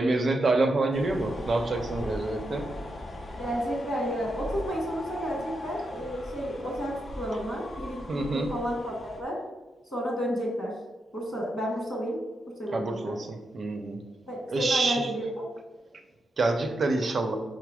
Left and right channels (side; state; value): both; normal; correlation 0.84